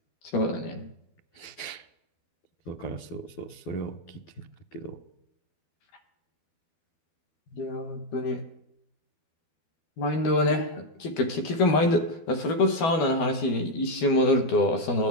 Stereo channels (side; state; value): right; late; 12 ms